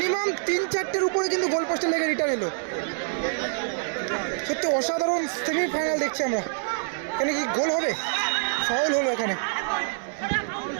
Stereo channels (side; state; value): left; silent; digital silence